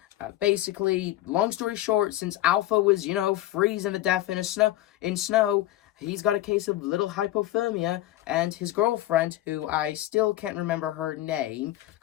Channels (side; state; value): right; quieter; 15.0 dB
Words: Basically, long story short, since Alpha was, freezing to death in snow, he's got a case of little hypothermia, and his girlfriend, who I still can't remember her name,